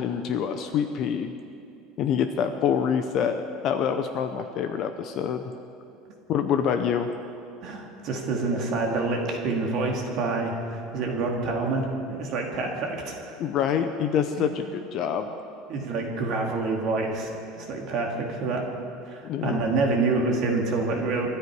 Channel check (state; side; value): normal; both; correlation 0.35